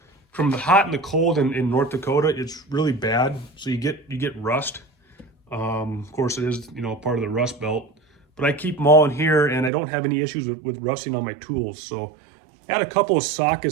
the hot and the cold in North Dakota. It's really bad, so you get rust. Of course, it is part of the rust belt, but I keep them all in here, and I don't have any issues with rusting on my tools. So I had a couple of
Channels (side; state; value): left; drops out; at 9.7 s